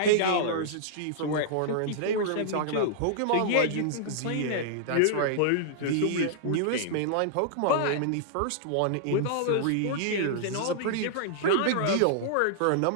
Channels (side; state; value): both; different; correlation -0.01